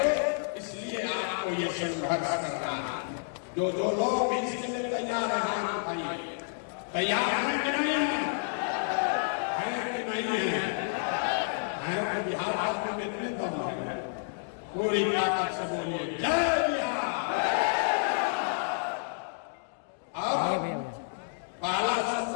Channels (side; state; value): right; silent; digital silence